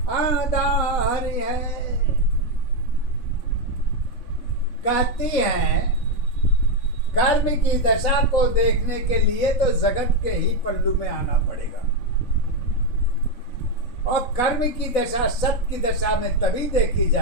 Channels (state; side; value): late; right; 4.0 ms